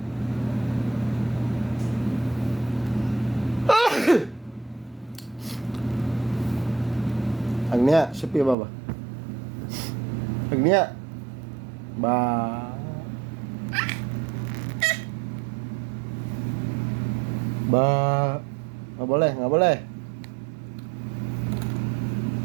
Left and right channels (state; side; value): drops out; left; at 8.6 s